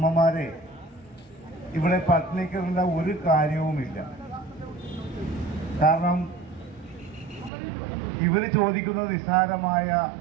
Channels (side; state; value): left; drops out; at 7.5 s